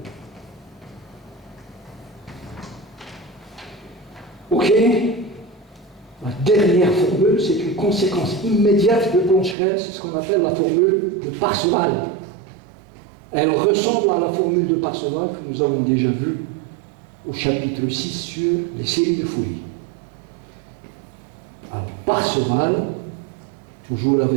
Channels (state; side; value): drops out; left; at 9.6 s